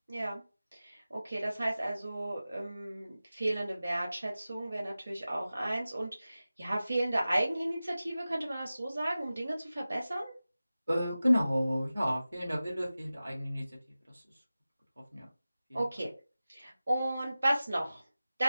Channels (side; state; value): both; inverted; correlation -0.96